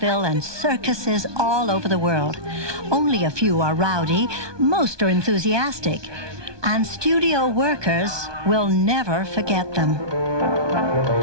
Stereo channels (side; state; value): left; late; 1.2 ms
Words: and circuses all over the world. Only a few are rowdy, most are enthusiastic, and studio workers will never forget them.